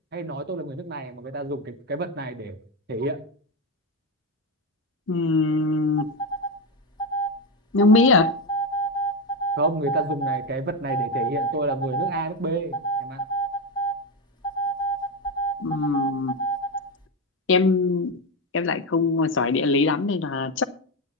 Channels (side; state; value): both; normal; correlation 0.11